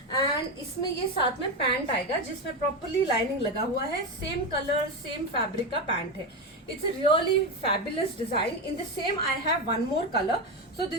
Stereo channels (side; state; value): both; normal; correlation 0.14